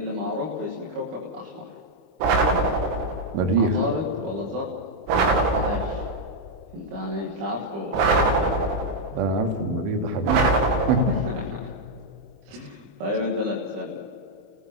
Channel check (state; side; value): late; left; 25 ms